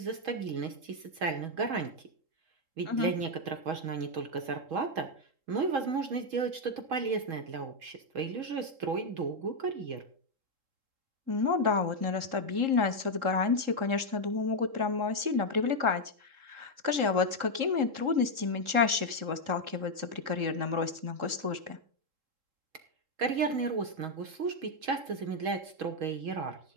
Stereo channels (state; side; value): late; left; 3.7 ms